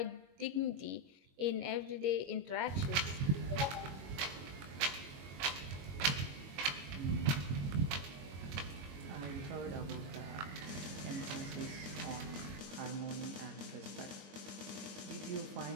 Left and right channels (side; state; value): left; late; 22 ms